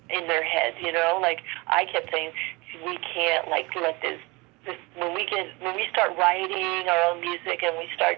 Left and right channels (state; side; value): quieter; left; 25.5 dB